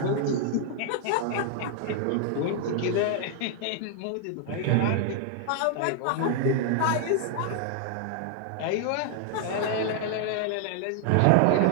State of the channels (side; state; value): both; different; correlation 0.00